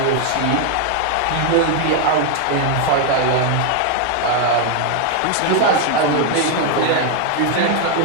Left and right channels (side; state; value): both; different; correlation 0.01